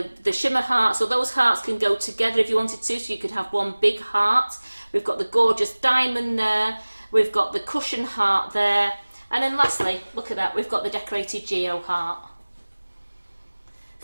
shimmer hearts, so those hearts can go together if you wanted to, so you could have one big heart. We've got the gorgeous diamond there. We've got the cushion heart there. And then lastly, look at that, we've got the decorated Geo heart.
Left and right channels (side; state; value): both; inverted; correlation -1.00